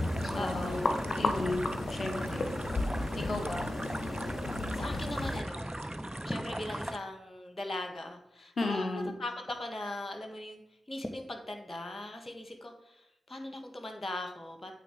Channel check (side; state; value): both; normal; correlation 0.91